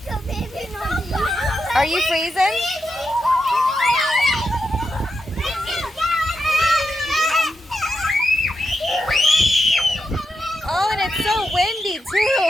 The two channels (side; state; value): both; normal; correlation 0.86